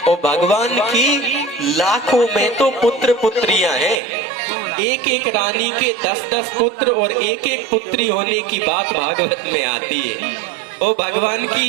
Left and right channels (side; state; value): left; drops out; at 4.0 s